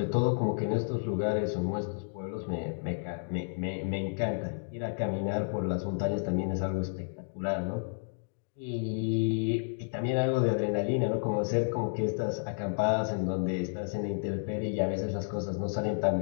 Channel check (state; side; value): silent; right; digital silence